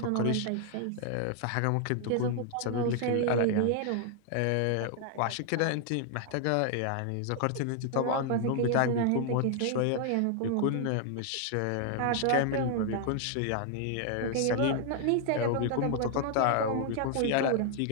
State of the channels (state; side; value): different; both; correlation 0.00